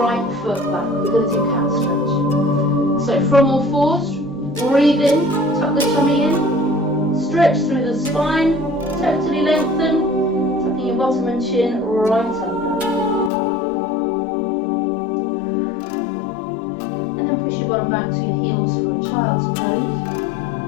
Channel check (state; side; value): drops out; right; at 13.3 s